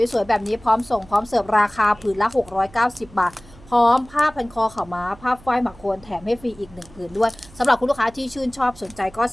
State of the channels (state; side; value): noise; right; hum, 23 dB below the sound